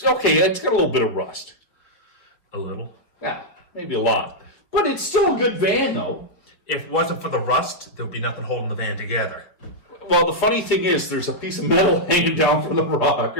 okay. It's got a little bit of rust. A little. Yeah, maybe a lot. But it's still a good van, though. If it wasn't for the rust, there'd be nothing holding the van together. Well, the funny thing is, there's a piece of metal hanging down from the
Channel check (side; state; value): right; late; 4.7 ms